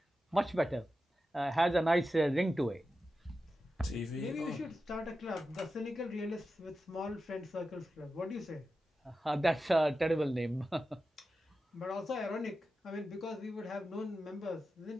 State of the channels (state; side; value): normal; both; correlation 0.92